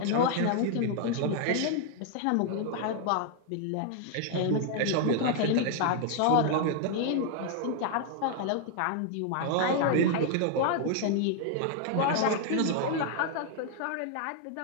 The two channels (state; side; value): different; both; correlation 0.00